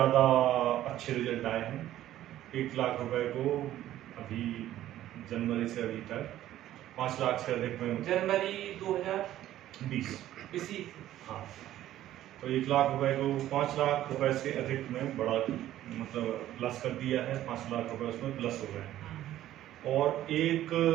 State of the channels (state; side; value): quieter; left; 13.2 dB